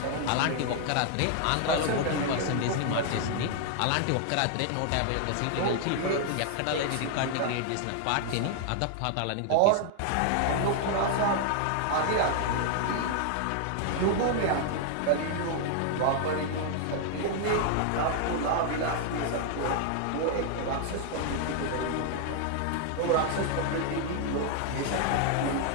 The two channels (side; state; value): both; different; correlation 0.00